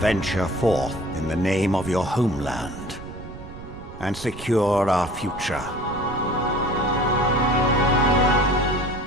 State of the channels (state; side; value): noise; right; rumble, 14 dB below the sound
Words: forth in the name of your homeland and secure our future.